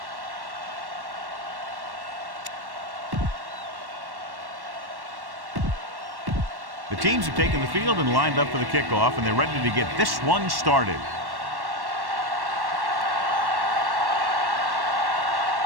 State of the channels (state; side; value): late; left; 1.1 ms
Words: The teams have taken the field and lined up for the kickoff, and they're ready to get this one started.